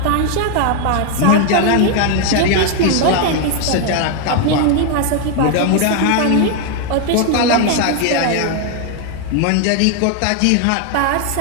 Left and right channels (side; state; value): both; different; correlation 0.01